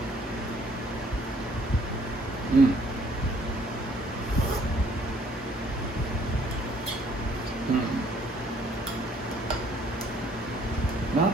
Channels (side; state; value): both; normal; correlation 0.62